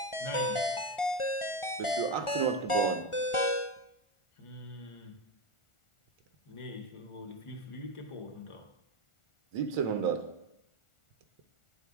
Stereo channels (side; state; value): right; late; 1.4 ms